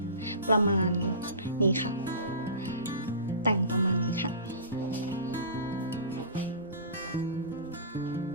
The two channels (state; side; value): inverted; both; correlation -0.34